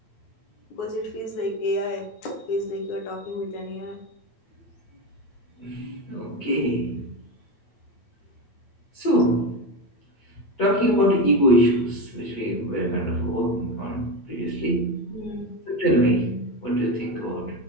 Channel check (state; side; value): late; right; 8.4 ms